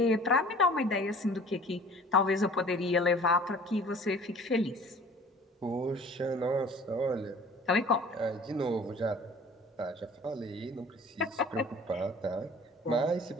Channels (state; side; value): normal; both; correlation 0.48